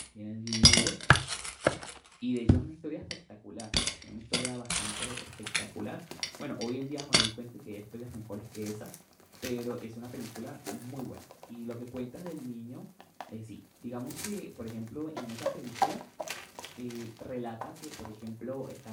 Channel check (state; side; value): identical; both; correlation 1.00